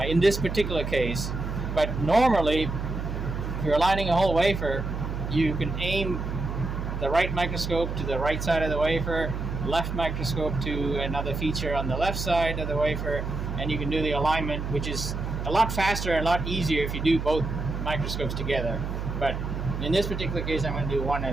in this particular case. But normally, if you're aligning a whole wafer, you can aim the right microscope to the right side of the wafer, left microscope to another feature on the left side of the wafer, and you can do the alignment, which is a lot faster and a lot easier if you do both microscopes together. But in this particular case, I'm going to do one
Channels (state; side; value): noise; right; hum, 4 dB below the sound